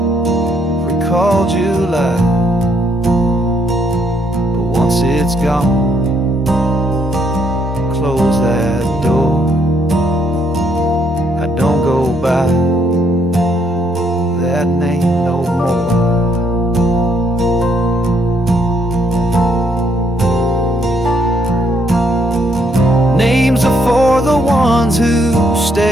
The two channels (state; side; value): normal; both; correlation 0.71